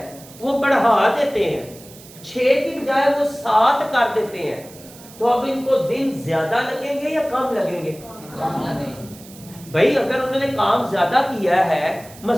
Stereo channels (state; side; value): noise; right; hiss, 20 dB below the sound